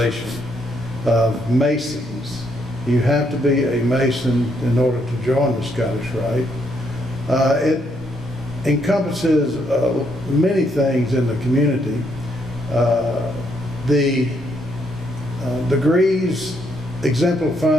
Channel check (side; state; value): both; normal; correlation 0.74